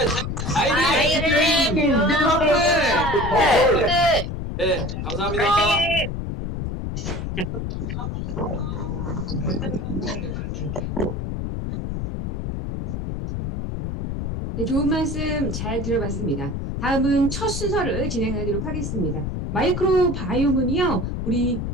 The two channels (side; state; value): left; noise; rumble, 4 dB below the sound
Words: I Dream New Purple. 네, 감사합니다. 네, 좋은 말씀 잘 들어봤습니다. 다음은 첫 순서를 진행하도록 하겠습니다. 마이크로바이옴은요, 우리